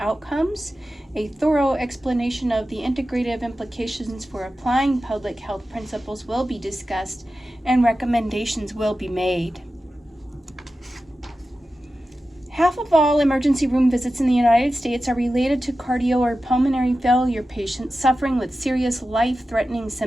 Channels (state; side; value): normal; both; correlation 0.93